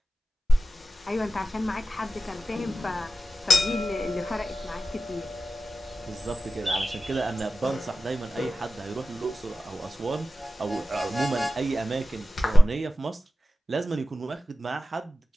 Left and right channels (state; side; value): normal; both; correlation 0.95